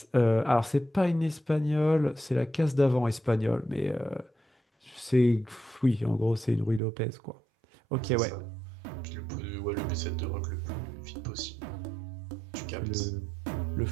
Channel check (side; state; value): left; drops out; at 6.8 s